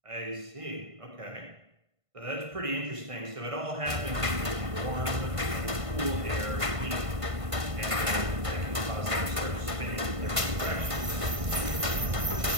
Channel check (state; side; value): late; left; 1.5 ms